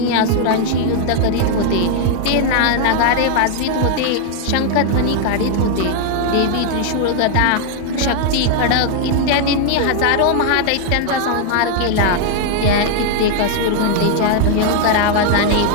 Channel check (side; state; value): both; different; correlation 0.00